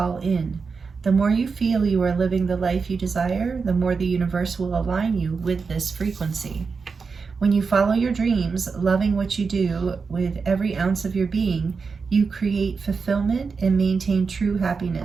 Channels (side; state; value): left; quieter; 5.0 dB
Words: in. The more you feel you are living the life you desire, the more the universe will align you with this frequency. When you follow your dreams, loving what you do with every ounce of your being, you create fulfillment and maintain true